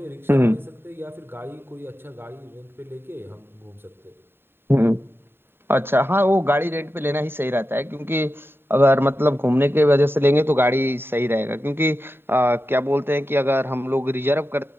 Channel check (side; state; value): left; late; 0.11 ms